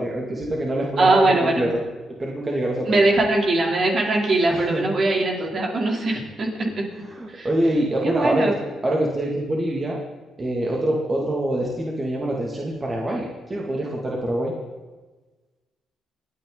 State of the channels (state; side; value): normal; both; correlation 0.86